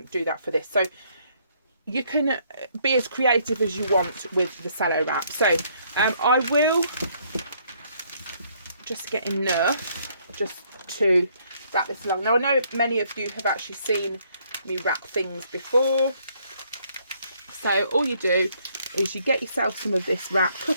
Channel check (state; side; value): inverted; both; correlation -0.67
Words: do that for this. So you can be as creative as you want with the Cello wrap. So I will just get enough just to wrap this along. Now I know many of you have actually seen me wrap things before. So all you do is you get yourself some of this wrap,